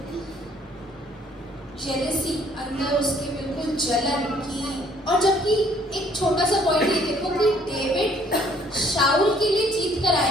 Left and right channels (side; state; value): both; normal; correlation 0.62